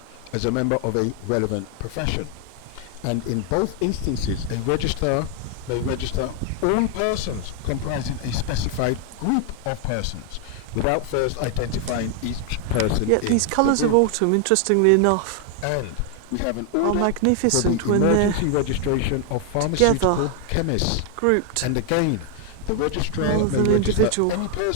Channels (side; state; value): both; different; correlation 0.00